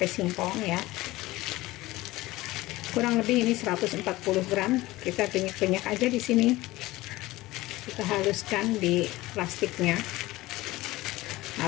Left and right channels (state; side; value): quieter; right; 18.6 dB